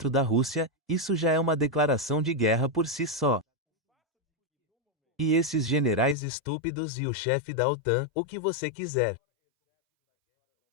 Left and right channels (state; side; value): drops out; right; at 6.2 s